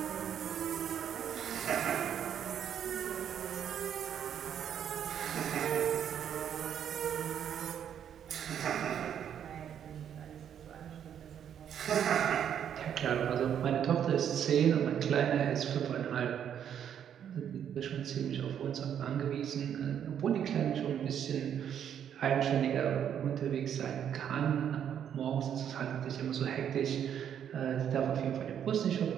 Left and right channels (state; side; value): quieter; left; 9.1 dB